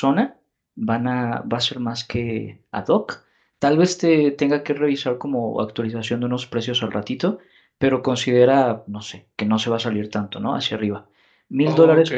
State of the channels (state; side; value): identical; both; correlation 1.00